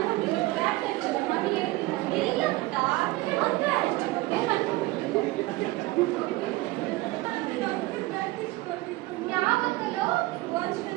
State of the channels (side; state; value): left; quieter; 19.7 dB